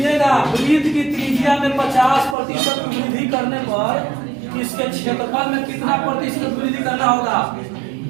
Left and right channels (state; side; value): drops out; left; at 2.4 s